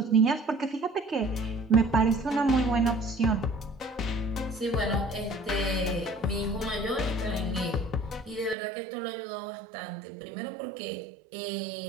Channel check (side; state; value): left; drops out; at 8.6 s